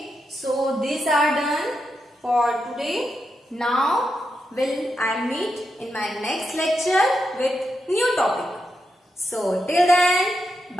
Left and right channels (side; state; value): both; normal; correlation 0.86